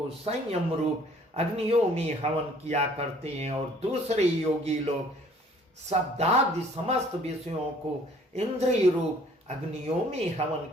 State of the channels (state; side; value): normal; both; correlation 0.56